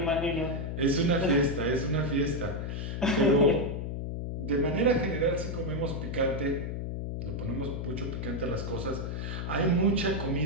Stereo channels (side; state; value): left; noise; hum, 4 dB below the sound